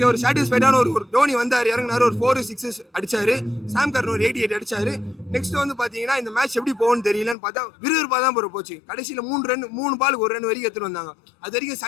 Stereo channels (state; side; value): drops out; right; at 7.4 s